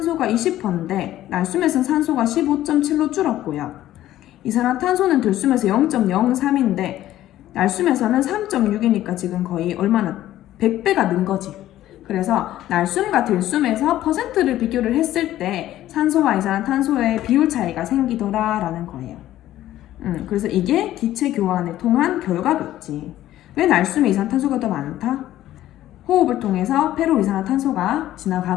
20%인데 날숨에서는 산소가 15.7로 줄었고요. 이산화탄소는 들숨에서 0.03인데 날숨에서는 3.6이니까 지금 거의 얼마나 100배가 는 거지. 그래서 날숨과 들숨에서 퍼센트를 비교를 했을 때 산소와 이산화탄소의 비율 차이가 생기더라라는 거예요. 그래서 이게 기체 교환을 통한 결과겠지. 왜 날숨에 이산화탄소가 더 많다? 호흡을 통해서 폐로 이산화탄소가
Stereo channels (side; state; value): right; quieter; 13.7 dB